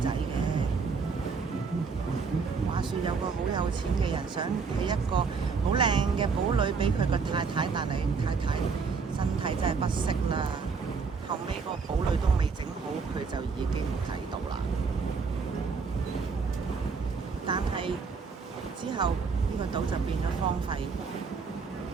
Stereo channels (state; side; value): quieter; left; 5.1 dB